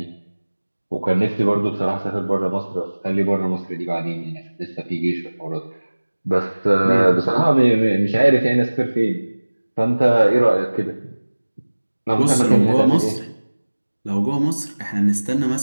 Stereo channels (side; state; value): both; inverted; correlation -1.00